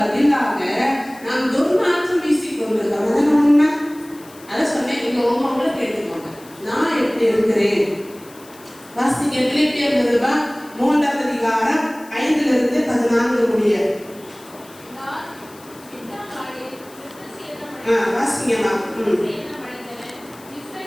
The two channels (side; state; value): left; noise; hiss, 23 dB below the sound